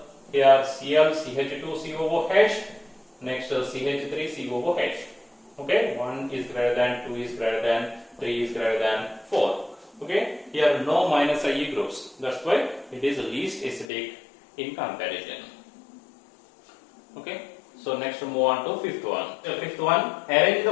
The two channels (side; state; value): right; drops out; at 13.9 s